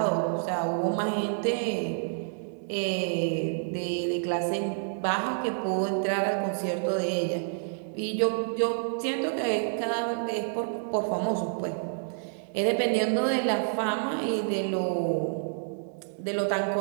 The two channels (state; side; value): silent; left; digital silence